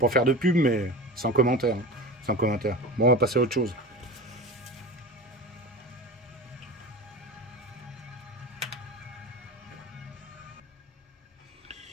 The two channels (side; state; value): both; normal; correlation 0.31